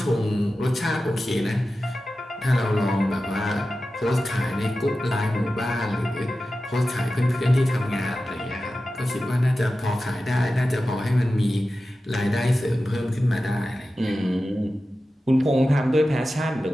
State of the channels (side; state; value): both; normal; correlation 0.94